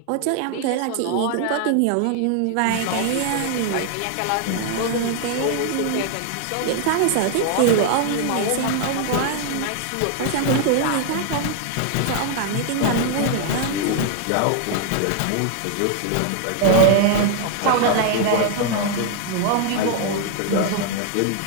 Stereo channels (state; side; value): different; both; correlation 0.00